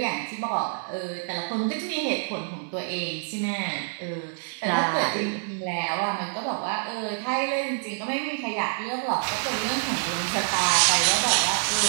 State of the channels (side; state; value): left; silent; digital silence